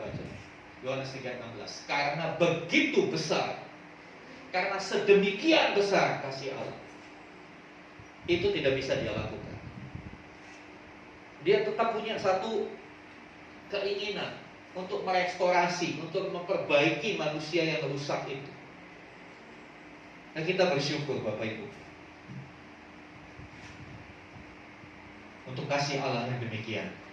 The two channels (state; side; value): identical; both; correlation 1.00